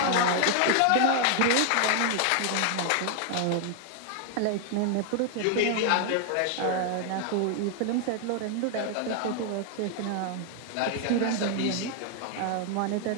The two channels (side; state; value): both; different; correlation 0.00